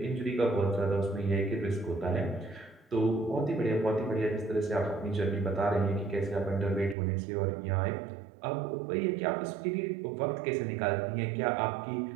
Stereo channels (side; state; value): left; drops out; at 7.0 s